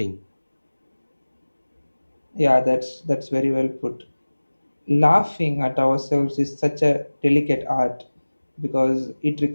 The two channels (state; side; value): inverted; both; correlation -1.00